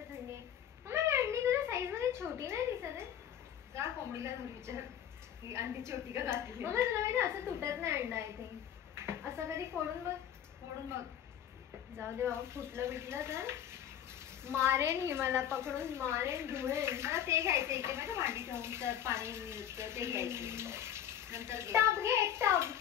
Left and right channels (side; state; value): right; quieter; 10.0 dB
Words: आहे. अंडी तुझ्या साईज मध्ये छोटी नाही दिसत आहे. जा कोंबडीला घरी विचार ही अंडी छोटी का घातली. मग तुला माहिती असं तुटत नाही अंडा. आय थिंक असं कधी फोडून बघ. जाऊ दे बाबा. फुटलं बिटलं तर मारेन. ही मला पकडून मारेन धुळेन. मला ते घ्यायचं इथे माहिती भांडी ठेवून तर पाणी मिळतं ते घ्यायचं. नंतर टब घे टब.